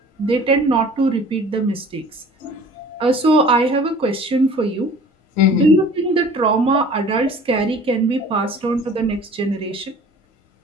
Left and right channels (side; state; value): both; normal; correlation 0.47